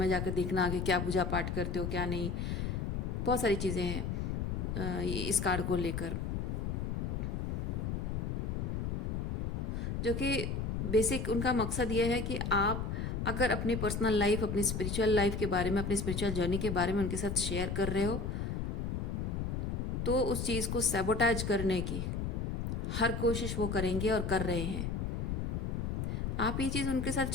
जाकर देखना कि क्या पूजा पाठ करते हो क्या नहीं, बहुत सारी चीज़ें हैं इस कार्ड को लेकर, जो कि बेसिक उनका मकसद ये है कि आप अगर अपनी पर्सनल लाइफ, अपनी स्पिरिचुअल लाइफ के बारे में, अपनी स्पिरिचुअल जर्नी के बारे में उनके साथ शेयर कर रहे हो, तो उस चीज़ को सैबोटाज करने की हर कोशिश वो करेंगे और कर रहे हैं। आप ये चीज़ उनके साथ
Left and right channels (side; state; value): left; noise; rumble, 1 dB below the sound